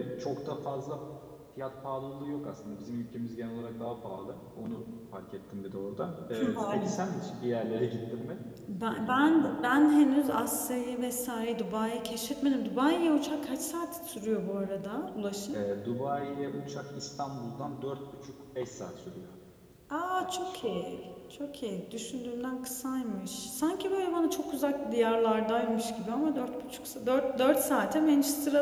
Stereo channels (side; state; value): both; identical; correlation 1.00